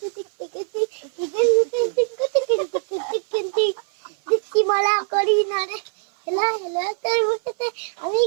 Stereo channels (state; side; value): silent; left; 60 dB below the other